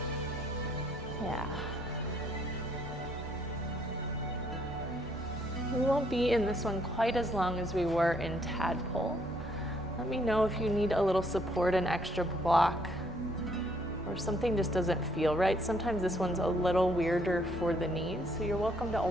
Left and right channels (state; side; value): normal; both; correlation 0.68